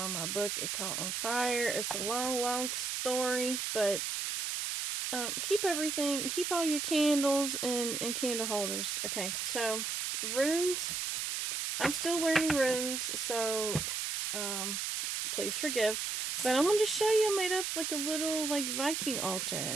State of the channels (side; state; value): right; noise; hiss, 2 dB below the sound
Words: my book, it caught on fire. It's a long, long story, but keep all your candles and candle holders. Okay, so runes. I'm still learning runes, so please forgive. But I'm going to show you I made up like a little like Viking